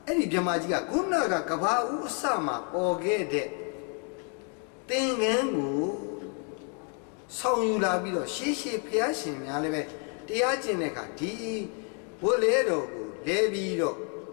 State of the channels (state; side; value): quieter; right; 40.0 dB